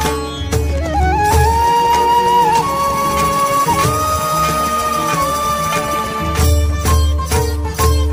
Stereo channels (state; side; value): identical; both; correlation 1.00